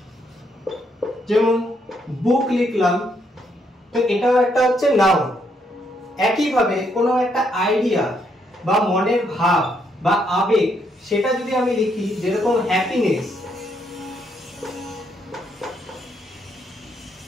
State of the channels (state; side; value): normal; both; correlation 0.74